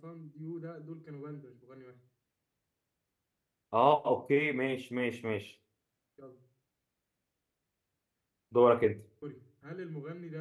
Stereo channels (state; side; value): identical; both; correlation 1.00